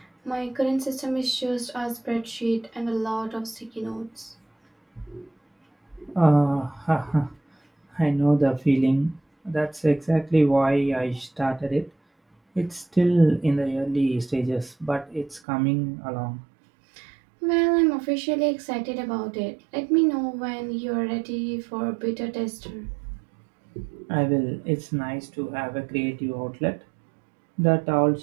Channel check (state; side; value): drops out; left; at 15.4 s